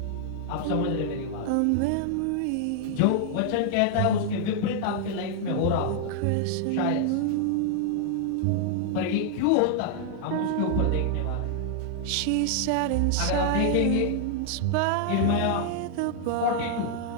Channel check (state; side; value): different; both; correlation 0.00